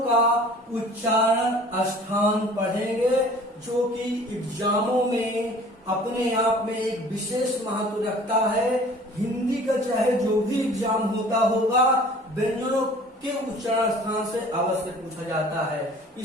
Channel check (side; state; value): both; normal; correlation 0.48